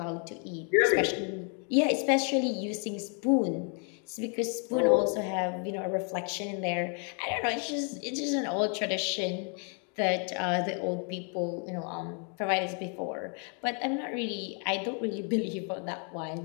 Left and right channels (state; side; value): quieter; right; 39.8 dB